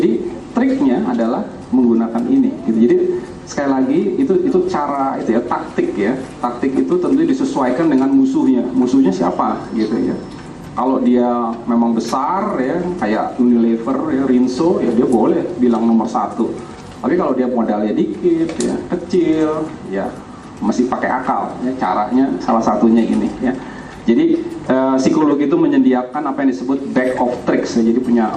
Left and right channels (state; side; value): identical; both; correlation 1.00